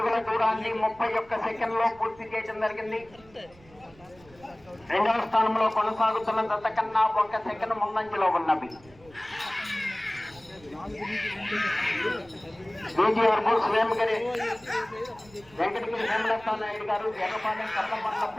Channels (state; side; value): noise; right; rumble, 26 dB below the sound